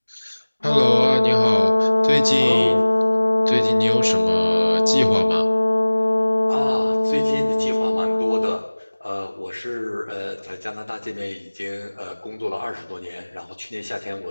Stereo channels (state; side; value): inverted; both; correlation -1.00